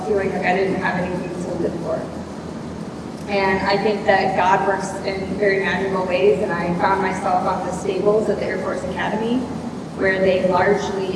feeling like I didn't have anything to live for. And I think that God works in very magical ways, and I found myself on the stables at the Air Force Academy, where they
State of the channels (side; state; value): both; identical; correlation 1.00